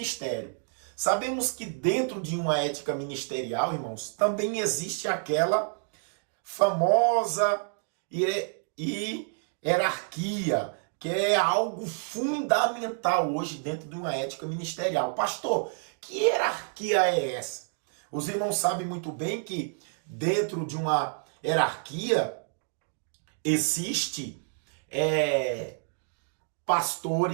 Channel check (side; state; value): left; silent; 59 dB below the other